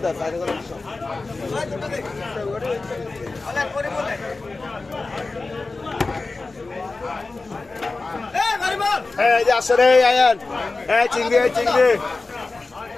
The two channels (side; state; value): right; quieter; 3.6 dB